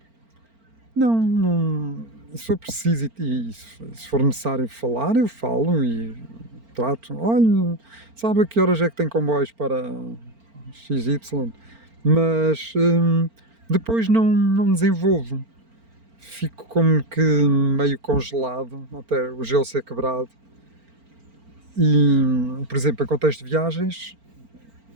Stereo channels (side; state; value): left; late; 4.4 ms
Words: Não, se for preciso e se for necessário falar, eu falo e trato. Olha, sabe a que horas é que tem comboios para XY? Mas depois não desenvolvo. Fico como que meio congelado até o gelo ser quebrado. E, por exemplo, em contexto de viagens,